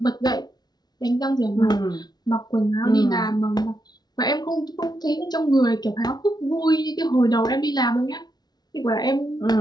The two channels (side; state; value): right; late; 0.19 ms